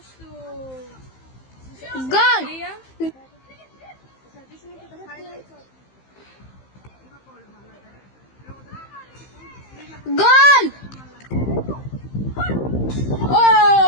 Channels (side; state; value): right; late; 15 ms